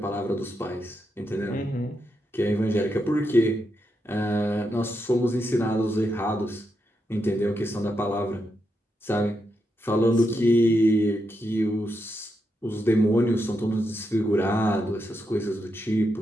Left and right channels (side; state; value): both; normal; correlation 0.84